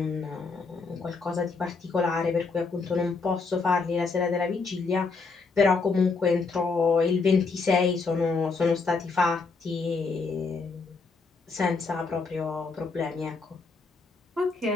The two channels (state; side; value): quieter; right; 4.4 dB